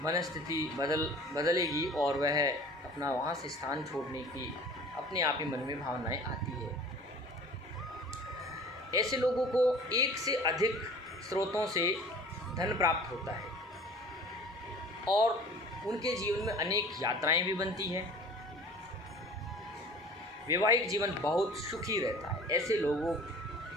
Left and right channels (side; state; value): both; normal; correlation 0.44